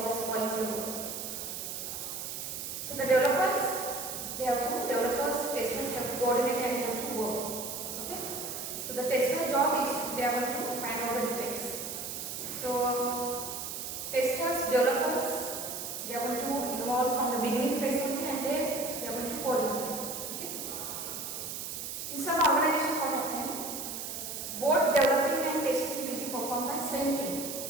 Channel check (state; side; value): noise; right; hiss, 6 dB below the sound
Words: are spoiling the work. So the developers, testers have to coordinate and they have to work. So the tester job is they are going to find out the defects. So testers, developers, they are going to involve from the beginning phase only, and then they are going to coordinate. Okay? In some organizations, what happens? Both developing and testing will be performed by same team.